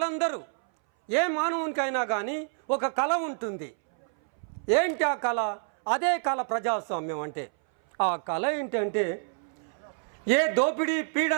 ఏ మానవునికైనా కానీ ఒక కళ ఉంటుంది. ఏంటి ఆ కళ? అదే కళ ప్రజాస్వామ్యం అంటే. ఆ కళ ఏంటంటే ఏ దోపిడీ,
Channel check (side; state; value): left; silent; 59 dB below the other